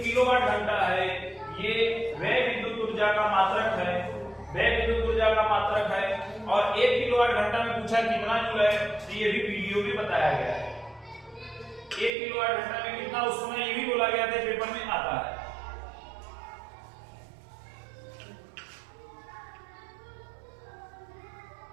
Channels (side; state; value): left; drops out; at 12.1 s